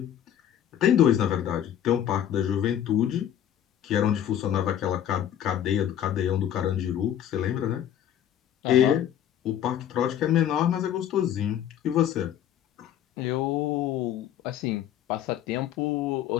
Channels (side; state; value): right; quieter; 10.5 dB